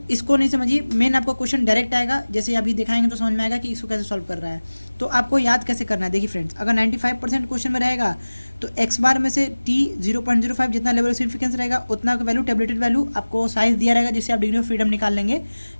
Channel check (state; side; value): inverted; both; correlation -1.00